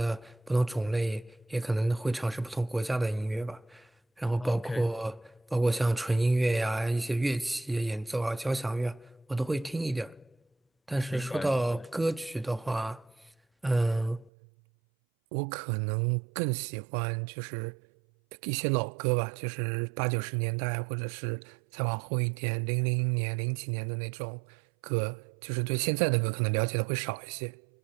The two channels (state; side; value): drops out; left; at 14.3 s